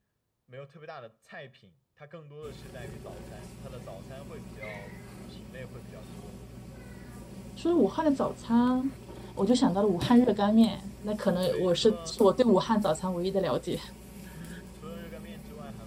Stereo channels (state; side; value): identical; both; correlation 1.00